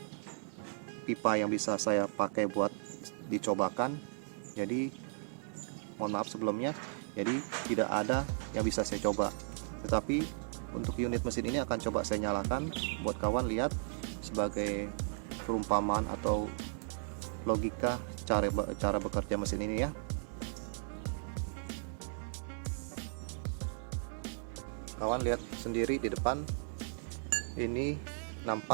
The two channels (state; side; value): silent; left; 54 dB below the other